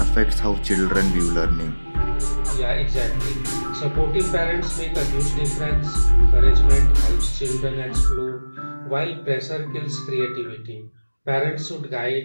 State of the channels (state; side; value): inverted; both; correlation -1.00